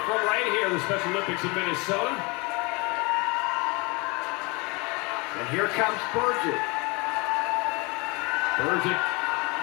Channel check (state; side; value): quieter; right; 27.7 dB